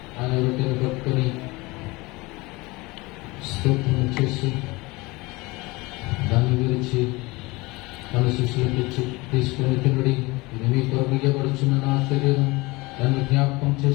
ఆయన రొట్టెను పట్టుకొని స్తోత్రం చేసి దాన్ని విరిచి మన శిష్యులకు ఇచ్చి తీసుకుని తినడి, ఇది మీ కొరకు ఇవ్వబడుచున్న నా శరీరం, దాన్ని జ్ఞాపకం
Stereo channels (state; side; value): quieter; right; 23.2 dB